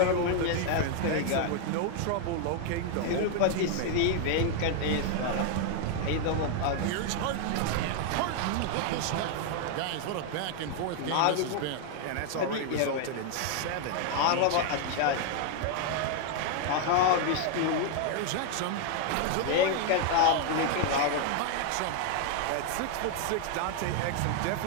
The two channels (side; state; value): both; different; correlation 0.00